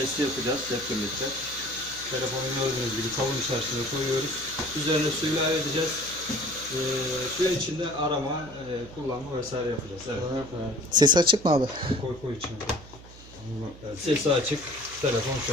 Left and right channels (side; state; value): right; noise; hum, 19 dB below the sound